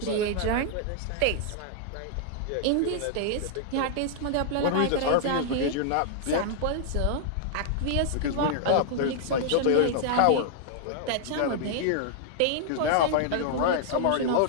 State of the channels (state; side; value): different; both; correlation -0.01